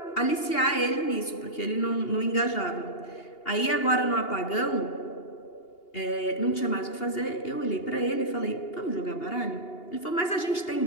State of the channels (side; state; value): right; late; 2.8 ms